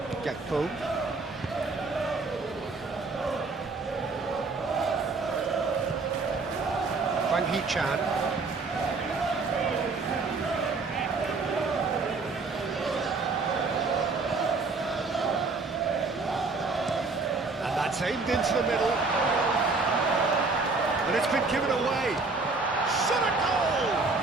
Gakpo. Hwang Hee-chan. Aimed into the middle. And it's been given away. Shot a goal!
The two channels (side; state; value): left; quieter; 3.9 dB